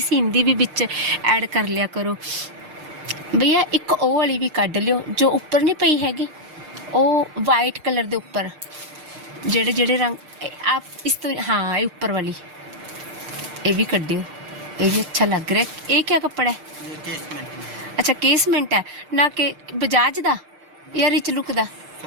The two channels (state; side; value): late; left; 6.6 ms